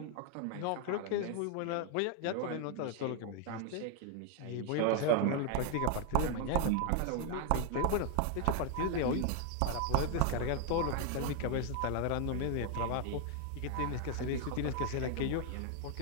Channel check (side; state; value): both; different; correlation 0.00